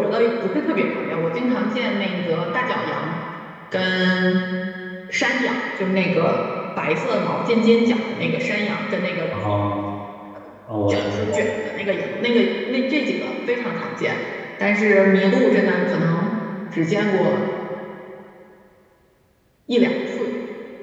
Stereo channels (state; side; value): identical; both; correlation 1.00